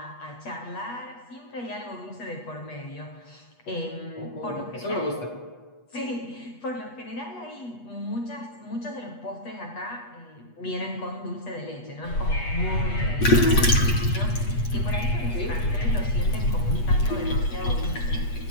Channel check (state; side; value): late; right; 8.3 ms